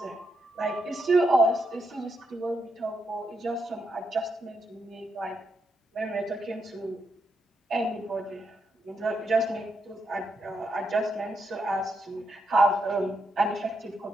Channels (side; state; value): both; normal; correlation 0.82